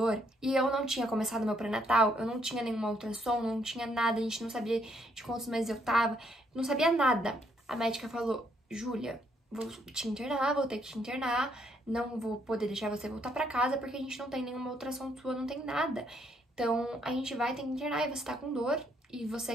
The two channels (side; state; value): both; normal; correlation 0.71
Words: e eu não tinha começado meu pré-natal, eu não tinha nenhuma ultrassom, não tinha nada, a gente não sabia de quantos meses eu tava, não sabia nada. A médica falou, Júlia, vou te internar, vou ter que te internar, não vou poder deixar você voltar pra casa, porque a gente não tem nenhuma ultrassom sua, não tem nada. Então, a gente vai ter que internar e você tá com dor, e você